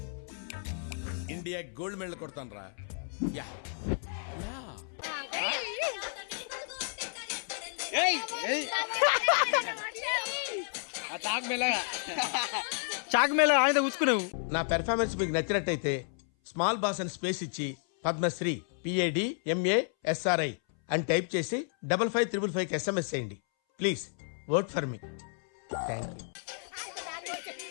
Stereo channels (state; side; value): silent; right; 57 dB below the other